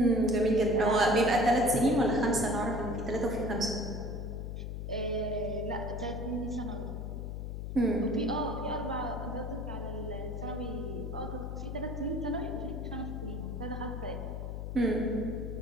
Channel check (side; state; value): left; noise; hum, 5 dB below the sound